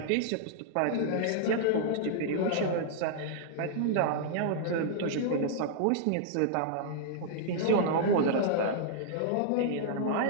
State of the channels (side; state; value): both; different; correlation -0.01